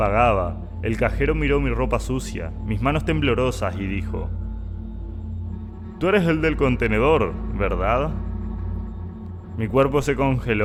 el cajero miró mi ropa sucia, mis manos temblorosas y dijo: «Tú eres el del contenedor, ¿verdad?». Mi cuerpo se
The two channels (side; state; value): both; identical; correlation 1.00